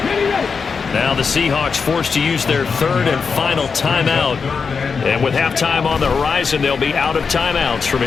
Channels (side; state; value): right; quieter; 5.4 dB